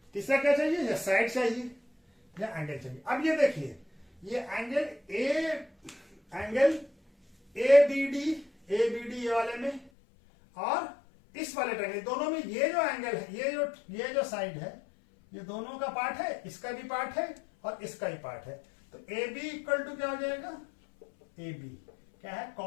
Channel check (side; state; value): right; drops out; at 9.9 s